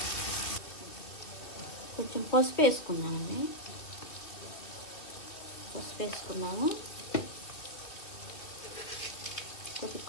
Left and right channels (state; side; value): late; right; 2.9 ms